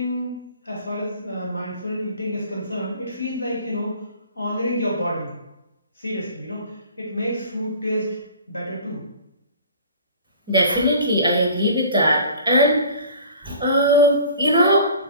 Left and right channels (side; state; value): both; inverted; correlation -0.46